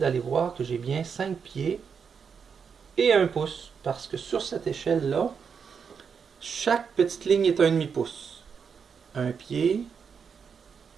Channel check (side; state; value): left; quieter; 6.4 dB